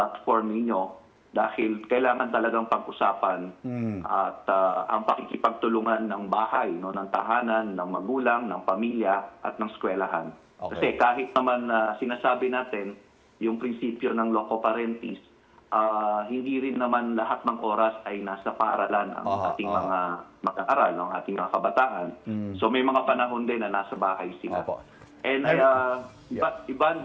ninyo dahil kailangan talagang pag-usapan at ang pakikipagtulungan ng bahay, no, ng tahanan, ng magulang, ng pamilya at ng eskwelahan. Kasi kahit naman sinasabi natin yung prinsipyo ng loco parentis, hindi rin naman lahat ng oras ay nasa paaralan ang ating mga mag-aaral, ang ating mga kabataan. So may mga panahon din na nasa bahay sila. And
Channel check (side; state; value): both; identical; correlation 1.00